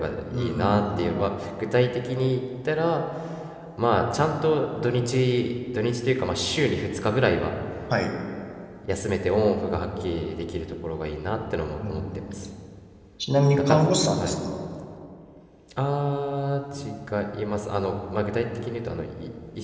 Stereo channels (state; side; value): identical; both; correlation 1.00